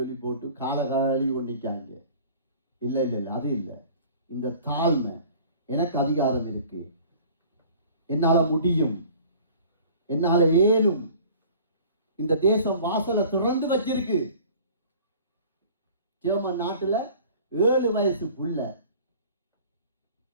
போட்டு கால கழுவி கொண்டிருக்காங்க. இல்லை, அது இல்லை. இந்த தாழ்மை, எனக்கு அதிகாரம் இருக்கு, என்னால முடியும், என்னால ஏனும், இந்த தேசம் வாசலை திறந்து வச்சிருக்கு. ஜெர்மன் நாட்டுல 7 வயசு புள்ள,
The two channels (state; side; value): inverted; both; correlation -0.47